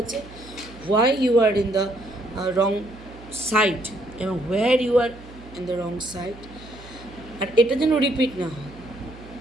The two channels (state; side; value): noise; right; hum, 19 dB below the sound